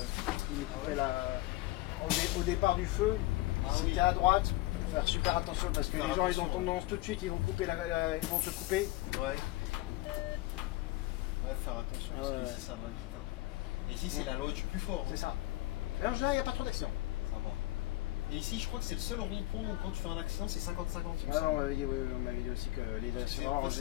me coupaient au départ du feu. C'était à droite. Faut faire super attention parce que les gens ils ont tendance tout de suite, ils vont te couper. Ouais. Ouais, faire attention parce qu'ici ça va vite. Hein. Et ici, c'est la loi du plus fort. Hein. C'est ça. Et en général, il n'y a pas trop d'accidents. Ça va. Et ici, je crois que c'est le seul rond-point où quand tu fais un accident, c'est 50-50. Ah non, on m'avait dit aussi que les accidents en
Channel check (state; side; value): quieter; right; 18.2 dB